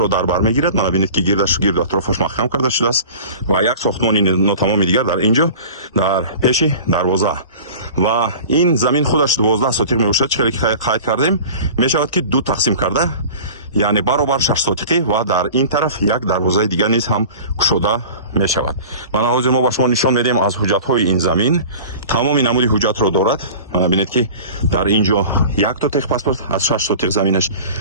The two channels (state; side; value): inverted; both; correlation -0.40